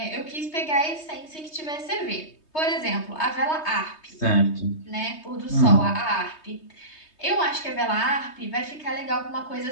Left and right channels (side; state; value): right; late; 3.2 ms